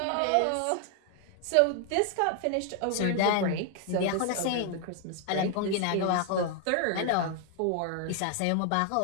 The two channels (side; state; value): both; different; correlation 0.00